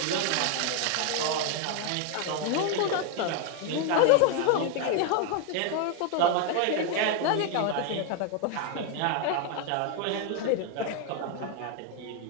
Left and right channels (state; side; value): different; both; correlation 0.01